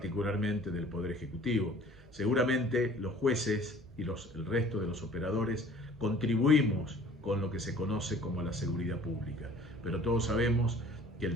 del Poder Ejecutivo. Seguramente los jueces y el resto de los operadores contribuimos con lo que se conoce como la seguridad pública, pero todos sabemos que el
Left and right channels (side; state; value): both; normal; correlation 0.51